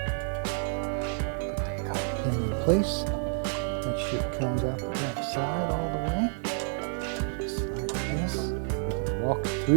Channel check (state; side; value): silent; left; digital silence